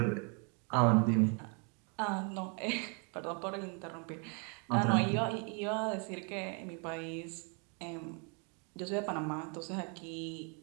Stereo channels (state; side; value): quieter; left; 37.0 dB